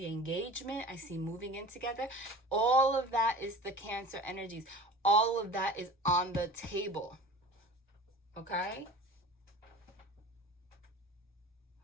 engagement. I see moving in together. All of that is the Cancer energies. All of that is on the table. Okay?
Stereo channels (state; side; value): normal; both; correlation 0.39